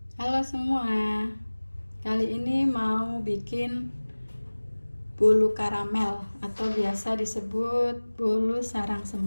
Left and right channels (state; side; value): inverted; both; correlation -1.00